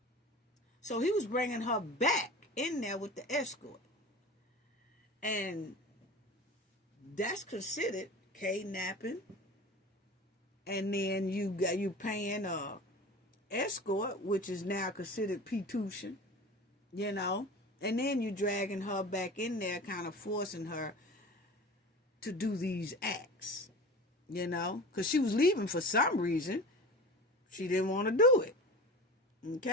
So he was bringing her back in there with the escort. And that's considered kidnapping. And then you paying a escort, which is now considered P-tuition, you know. And then you dragging her back in there, kind of forcing her to do these acts, you know. Because she was leaving for some reason. She didn't want to do it.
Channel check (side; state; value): both; normal; correlation 0.35